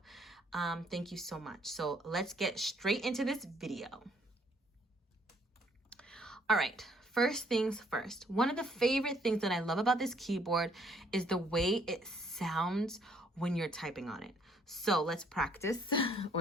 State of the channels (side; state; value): both; normal; correlation 0.65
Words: Thank you so much. So let's get straight into this video. All right. First things first, one of the favorite things that I love about this keyboard is the way it sounds when you're typing on it. So let's practice